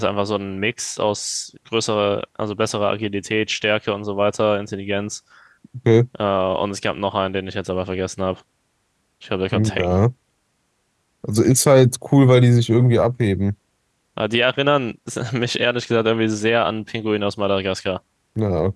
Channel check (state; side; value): identical; both; correlation 1.00